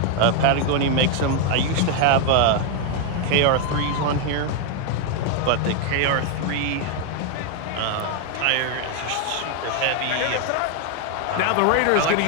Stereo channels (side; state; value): both; different; correlation 0.01